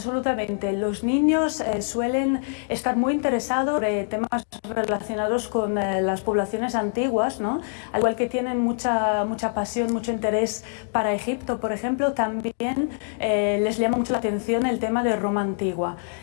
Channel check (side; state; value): right; silent; digital silence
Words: Los niños suelen estar muy interesados en temas relacionados con las poblaciones antiguas, ¿no? Al igual que tienen mucha pasión, mucho interés para Egipto, por ejemplo, también les llama mucho la atención el tema de Roma antigua.